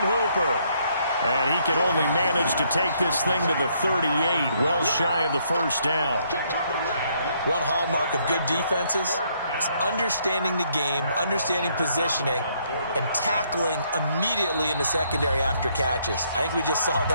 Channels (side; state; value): both; inverted; correlation -0.70